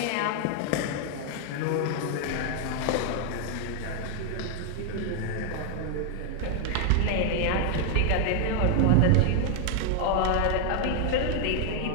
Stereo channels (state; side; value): different; both; correlation 0.00